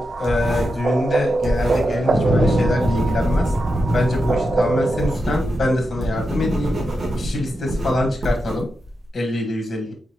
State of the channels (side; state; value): both; normal; correlation 0.87